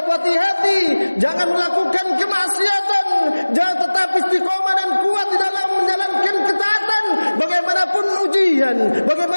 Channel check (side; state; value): both; inverted; correlation -1.00